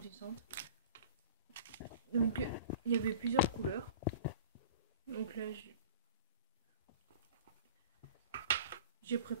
Donc, il y avait plusieurs couleurs. Donc là, j'ai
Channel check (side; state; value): both; inverted; correlation -0.41